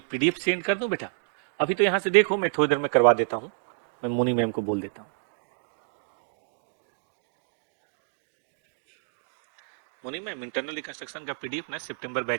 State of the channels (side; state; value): left; silent; digital silence